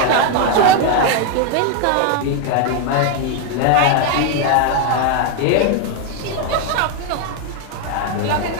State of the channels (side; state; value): both; different; correlation 0.01